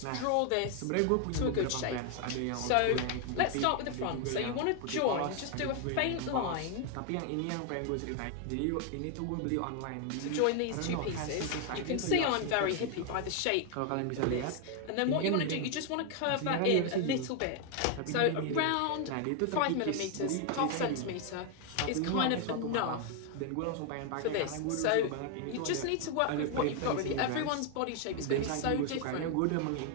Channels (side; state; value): both; different; correlation 0.00